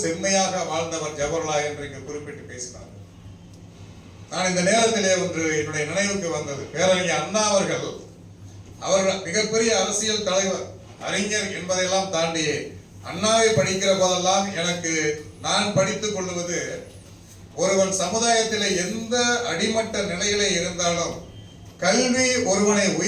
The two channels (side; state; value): both; identical; correlation 1.00